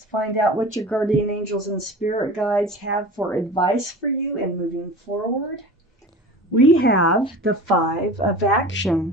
find out what your guardian angels and spirit guides have for advice for you in moving forward. We have the Five of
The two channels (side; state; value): both; normal; correlation 0.36